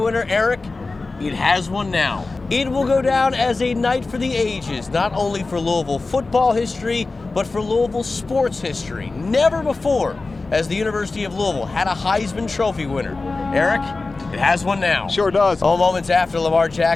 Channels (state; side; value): quieter; right; 3.6 dB